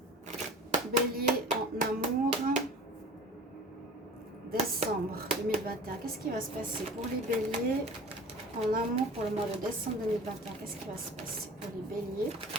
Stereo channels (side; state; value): both; normal; correlation 0.40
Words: Bélier en amour. Décembre 2021. Qu'est-ce qui va se passer pour les béliers en amour pour le mois de décembre 2021? Qu'est-ce qui va se passer pour les béliers